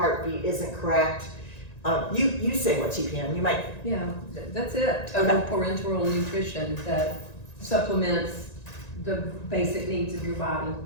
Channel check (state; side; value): late; right; 1.9 ms